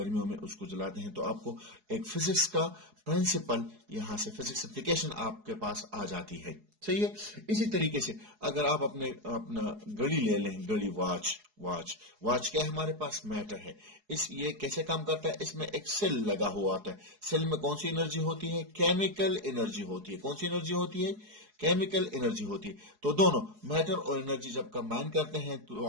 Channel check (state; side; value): late; left; 4.7 ms